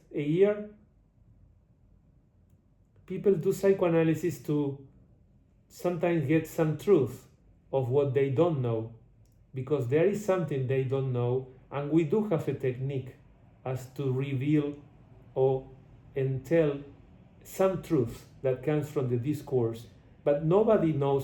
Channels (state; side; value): identical; both; correlation 1.00